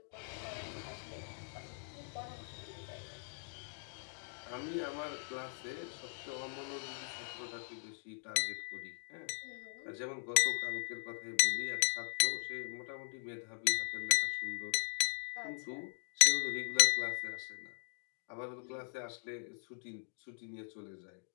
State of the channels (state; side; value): silent; right; digital silence